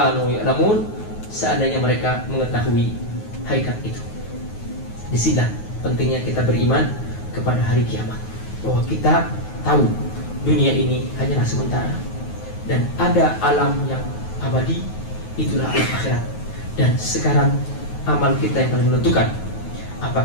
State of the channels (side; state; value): right; late; 9.4 ms